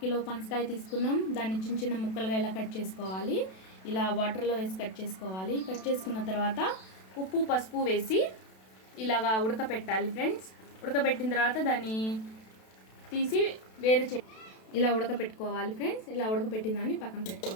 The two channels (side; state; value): right; late; 32 ms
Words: కిలో పనసకాయ తీసుకున్నాం. దాన్ని చిన్న చిన్న ముక్కలుగా ఇలా కట్ చేసుకోవాలి. ఇలా వాటర్లో వేసి కట్ చేసుకోవాలి. కట్ చేసుకున్న తర్వాత ఉప్పు పసుపు వేసి ఇలాగా ఉడకపెట్టాలి ఫ్రెండ్స్. ఉడకబెట్టిన తర్వాత దాన్ని తీసి ఇలా ఉడకపెట్టుకోవాలి ఫ్రెండ్స్. ఇలా ఉడకపెట్టిన దాన్ని పక్కన